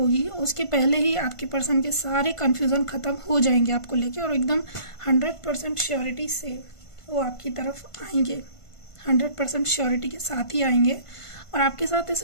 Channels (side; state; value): right; late; 1.5 ms